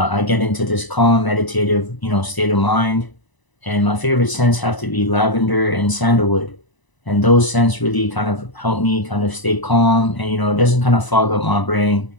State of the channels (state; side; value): late; right; 1.0 ms